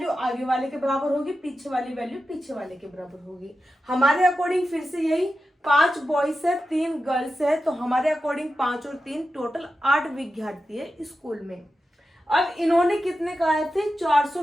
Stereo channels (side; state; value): both; normal; correlation 0.91